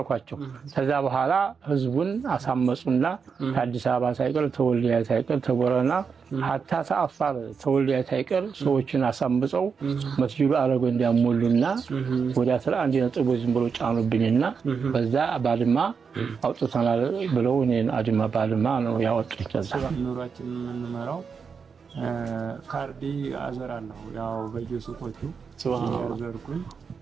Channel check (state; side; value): quieter; left; 5.9 dB